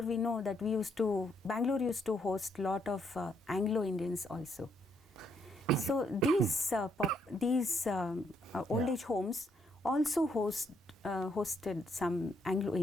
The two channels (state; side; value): normal; both; correlation 0.74